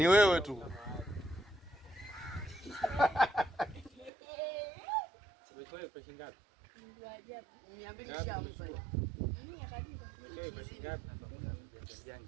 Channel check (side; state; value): left; drops out; at 4.1 s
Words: wewe tu. Umetoa pesa ngapi? Ndio ajabu. 200 shamu pale. Mimi akadiba. Umetoa pesa ngapi?